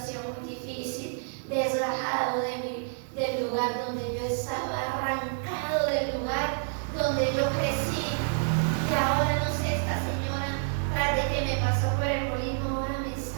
muy difícil, desgajado del lugar donde yo estaba, arrancado del lugar donde yo crecí. Y ahora no sé, esta señora, tras de que me pasó por el molino, ahora me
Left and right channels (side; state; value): left; silent; digital silence